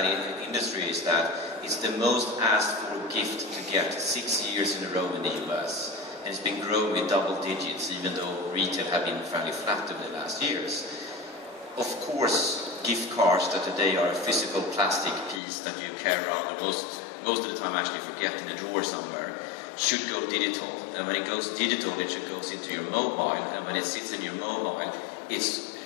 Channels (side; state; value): right; drops out; at 15.4 s